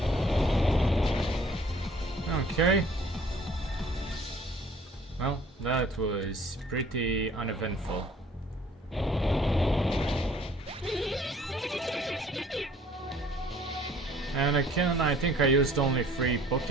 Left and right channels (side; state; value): both; normal; correlation 0.55